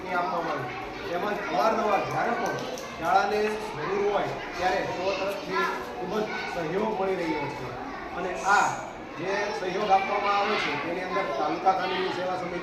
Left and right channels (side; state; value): both; identical; correlation 1.00